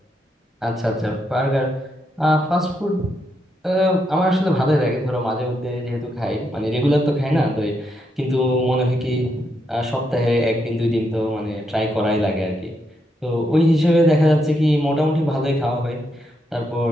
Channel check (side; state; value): both; normal; correlation 0.80